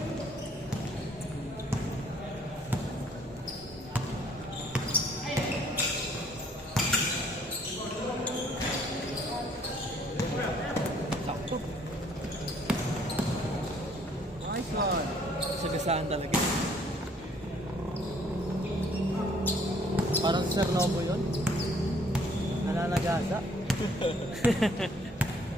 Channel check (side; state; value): both; normal; correlation 0.61